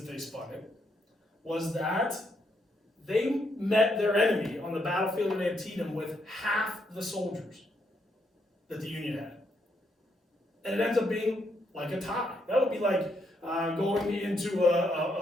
they spun it was that they met their enemy on the battlefield of Antietam with half the soldiers that the Union had. And it ends up being like a tie. That would be like going into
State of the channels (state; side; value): normal; both; correlation 0.77